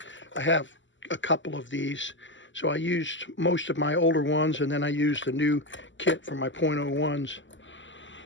I have a couple of these, so I used most of my older ones, and then I used the new kit for my .01s.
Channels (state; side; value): late; right; 0.54 ms